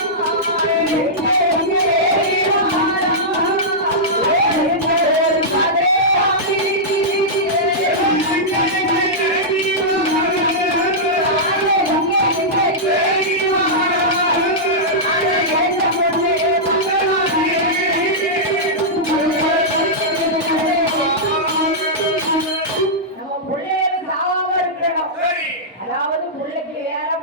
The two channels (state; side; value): normal; both; correlation -0.11